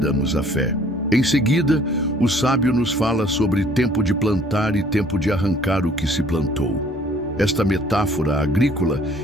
a fé. Em seguida, o sábio nos fala sobre tempo de plantar e tempo de arrancar o que se plantou. Esta metáfora agrícola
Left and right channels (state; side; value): normal; both; correlation 0.58